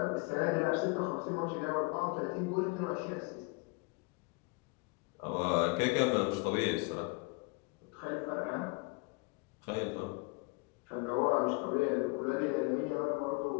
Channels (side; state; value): right; quieter; 29.0 dB